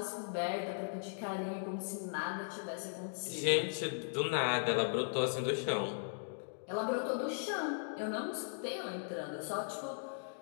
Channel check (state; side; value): silent; right; digital silence